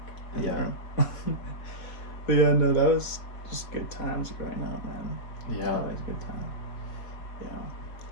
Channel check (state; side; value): late; right; 4.3 ms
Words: in the Yeah. room. But yeah, no, that was just good times growing up, man. Yeah. Always a good time.